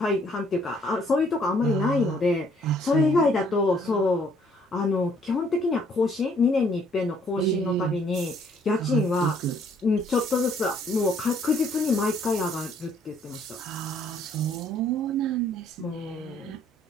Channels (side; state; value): both; normal; correlation 0.64